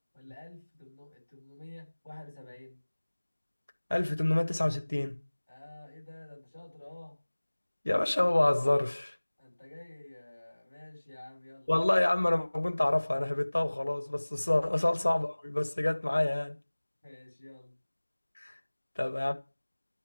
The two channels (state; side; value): inverted; both; correlation -1.00